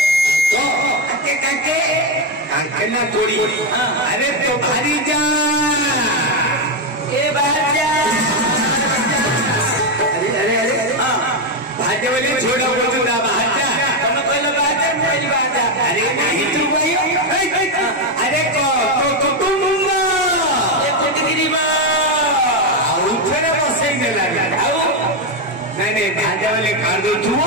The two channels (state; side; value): normal; both; correlation 0.07